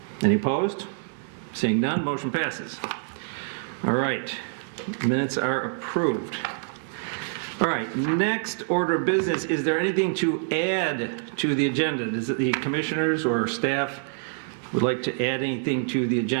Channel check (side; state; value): left; silent; digital silence